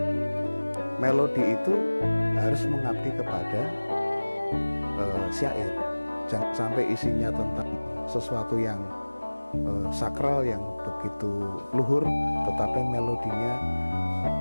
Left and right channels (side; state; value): both; inverted; correlation -1.00